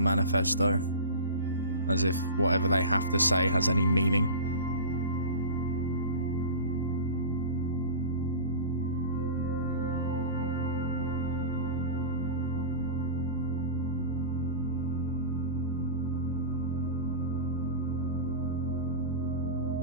manifesto. As if whatever they have to say has any meaning.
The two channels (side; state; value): both; inverted; correlation -0.32